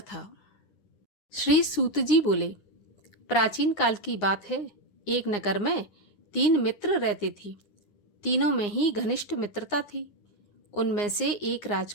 श्री सूत जी बोले, प्राचीन काल की बात है। एक नगर में 3 मित्र रहते थे। तीनों में ही घनिष्ठ मित्रता थी। उनमें से एक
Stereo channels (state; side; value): late; right; 9.7 ms